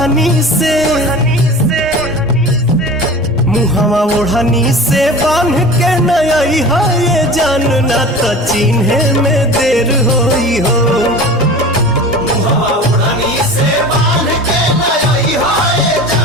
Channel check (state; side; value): normal; both; correlation 0.37